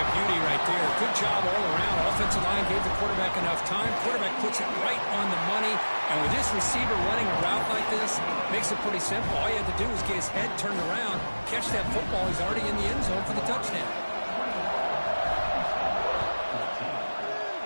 beauty right there. Good job all around. Offensive line gave the quarterback enough time. Quarterback puts it right on the money. And with this receiver running a route like this, makes it pretty simple. All you have to do is get his head turned around, catch that football. He's already in the end zone for the touchdown.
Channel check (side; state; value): both; inverted; correlation -1.00